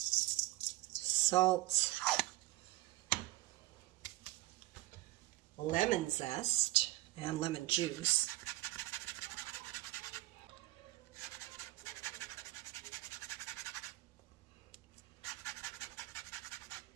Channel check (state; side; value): quieter; left; 18.7 dB